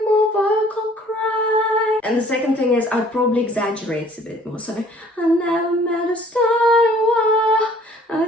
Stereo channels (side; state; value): both; normal; correlation 0.56